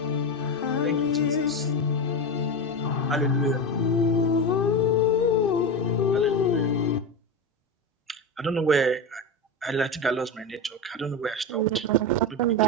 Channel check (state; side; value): normal; both; correlation 0.17